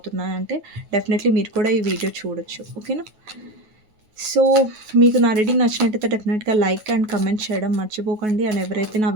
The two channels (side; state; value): left; late; 9.3 ms